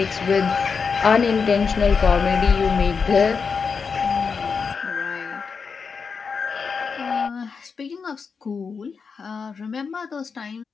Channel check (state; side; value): quieter; right; 5.5 dB